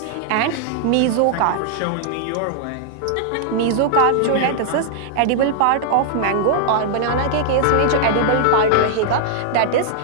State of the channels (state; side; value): different; both; correlation -0.01